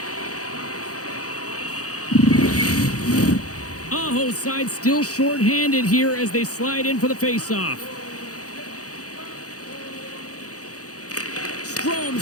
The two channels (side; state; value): right; late; 0.67 ms